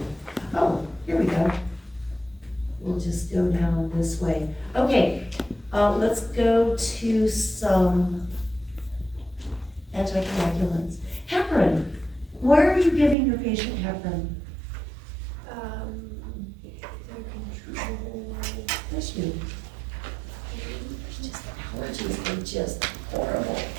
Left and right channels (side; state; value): left; drops out; at 13.2 s